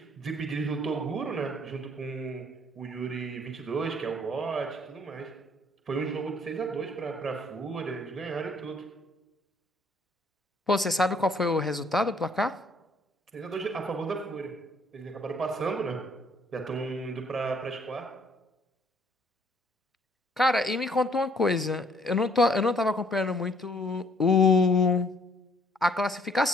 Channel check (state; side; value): normal; both; correlation 0.63